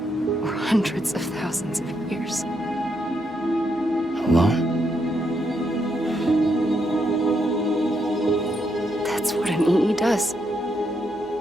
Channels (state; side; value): normal; both; correlation 0.79